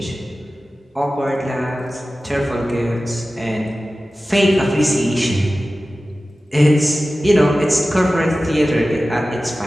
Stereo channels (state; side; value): normal; both; correlation 0.95